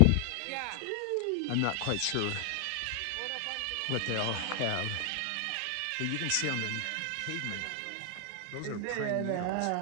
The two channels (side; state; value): both; different; correlation 0.00